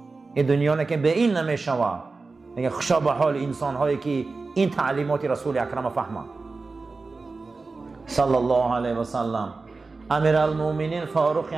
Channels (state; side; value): quieter; left; 3.9 dB